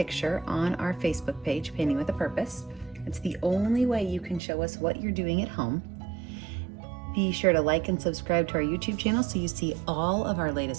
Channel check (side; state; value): left; drops out; at 4.4 s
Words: on our Facebook page, Painting with a Purpose. It's the only way you can show us what you're doing at home. Be sure to like and subscribe to our YouTube channel so you see all of our